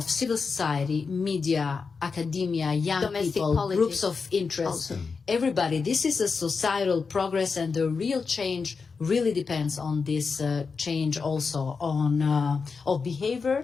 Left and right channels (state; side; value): quieter; right; 5.0 dB